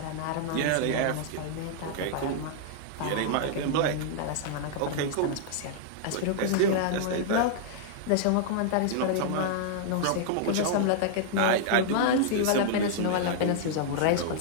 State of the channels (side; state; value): both; different; correlation -0.01